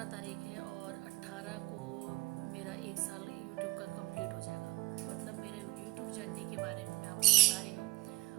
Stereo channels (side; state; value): left; quieter; 22.5 dB